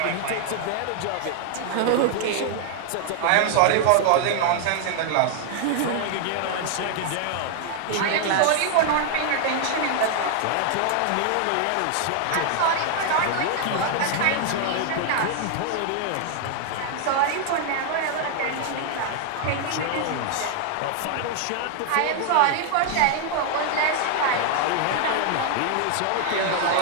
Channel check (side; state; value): both; different; correlation 0.00